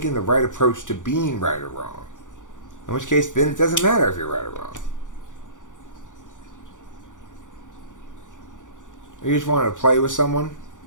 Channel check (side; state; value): right; late; 0.87 ms